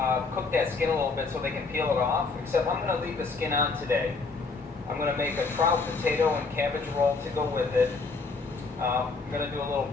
cook that skin a little bit so they can peel it off, except I'm going to leave the skin on today. I'm going to make a trout, potato, and cabbage roll to go with it. I'm going to do a little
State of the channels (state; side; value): quieter; right; 4.2 dB